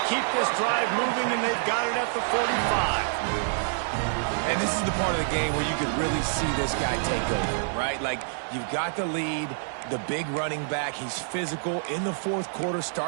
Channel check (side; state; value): left; silent; digital silence